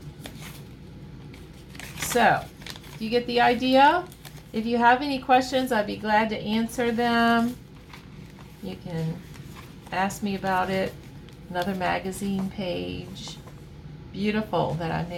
So, you get the idea? If you have any questions, I'd be glad to answer them. You can ask me about it. Another magazine page. Beautiful that I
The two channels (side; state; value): both; identical; correlation 1.00